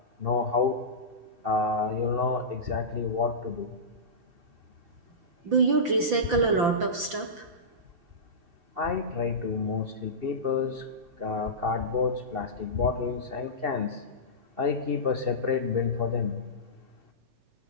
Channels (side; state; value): left; late; 5.9 ms